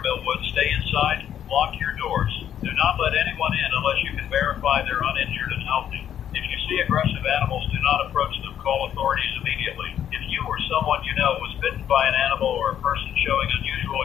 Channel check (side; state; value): right; quieter; 10.0 dB